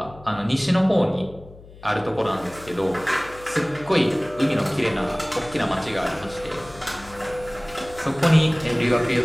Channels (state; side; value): noise; left; hum, 20 dB below the sound